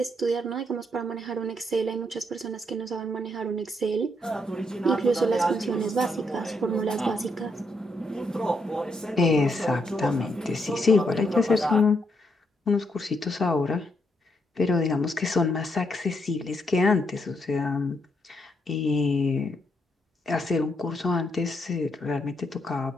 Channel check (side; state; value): both; normal; correlation 0.77